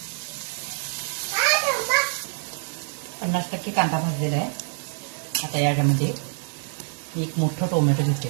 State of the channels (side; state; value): left; silent; 61 dB below the other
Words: 50% कांदा भाजलेला आहे. आता याच्यामध्ये एक मोठं टोमॅटो